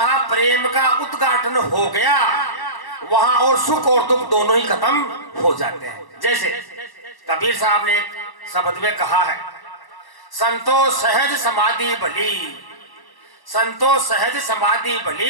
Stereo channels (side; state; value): right; late; 1.1 ms